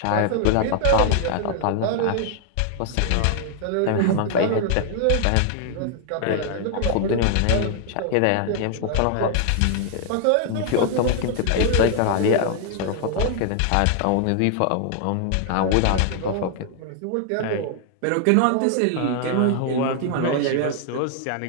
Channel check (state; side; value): different; both; correlation 0.00